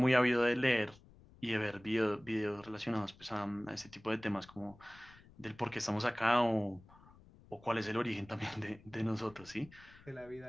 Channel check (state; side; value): noise; left; rumble, 24 dB below the sound